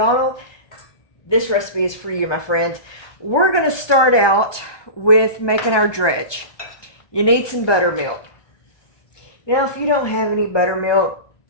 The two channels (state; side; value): late; right; 1.2 ms